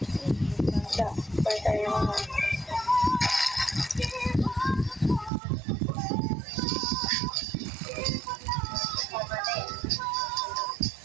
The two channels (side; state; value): left; drops out; at 5.3 s